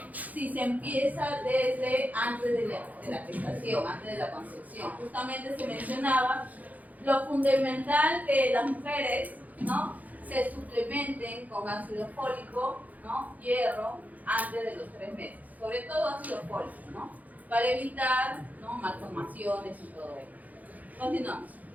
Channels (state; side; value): late; left; 0.078 ms